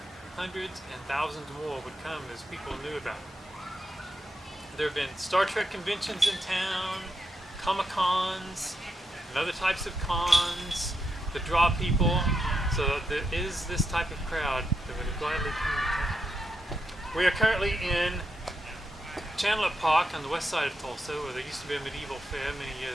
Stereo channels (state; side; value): normal; both; correlation 0.83